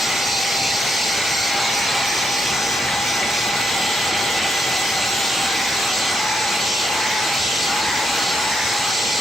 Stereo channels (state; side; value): normal; both; correlation 0.79